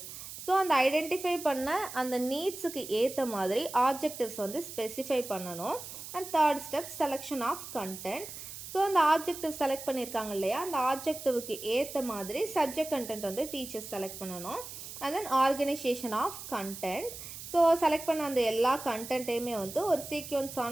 So அந்த ஐடென்டிஃபை பண்ண அந்த நீட்ஸுக்கு ஏற்ற மாதிரி ஆப்ஜெக்டிவ்ஸ் வந்து ஸ்பெசிஃபை பண்ணணும். And third step, selection of content. So அந்த ஆப்ஜெக்டிவ் செலக்ட் பண்ணியிருக்காங்க இல்லையா, அந்த ஆப்ஜெக்டிவ்க்கு ஏற்ற மாதிரி சப்ஜெக்ட் கண்டென்ட் வந்து டீச்சர்ஸ் செலக்ட் பண்ணணும். And then organisation of content. So select பண்ண அந்த எல்லா கண்டென்ட்டையுமே வந்து ஒரு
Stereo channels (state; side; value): noise; right; hiss, 11 dB below the sound